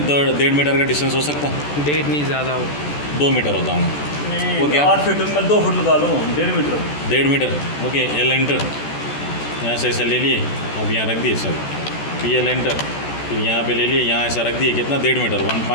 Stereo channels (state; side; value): late; right; 14 ms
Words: 1.5 मीटर का डिस्टेंस हो सकता? 1.5 नहीं, ज़्यादा हो। 2 मीटर होता हूँ वो क्या? 8 फीट में 2 फुट लगा लो, 1.5 metre. 1.5 metre. Okay, L enter, यहाँ से ऐसे ले लिए, अब यहाँ रख दिए सर, पी एल एंटर, फिर यहाँ पे ले लिए, यहाँ ऐसा रख दिए, कितना? 1.5 मीटर,